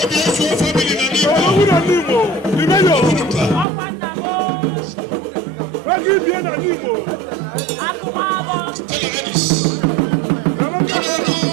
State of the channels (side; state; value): left; drops out; at 3.7 s